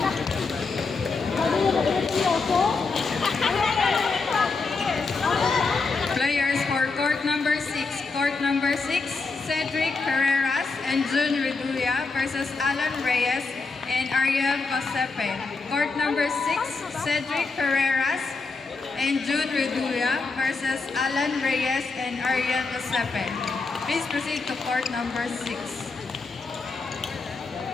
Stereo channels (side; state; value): right; quieter; 4.2 dB